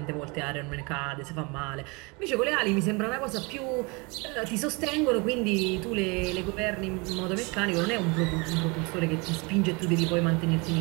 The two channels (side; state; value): left; quieter; 28.6 dB